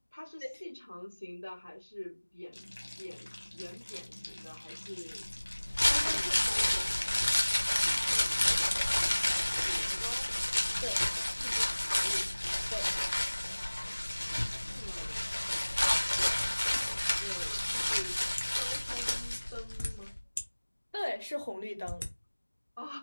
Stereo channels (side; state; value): both; inverted; correlation -1.00